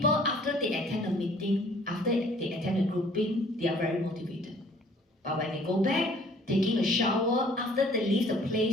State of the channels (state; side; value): normal; both; correlation 0.56